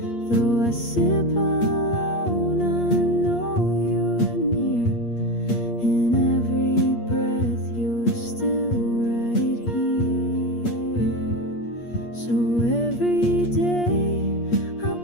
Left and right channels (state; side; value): late; right; 8.5 ms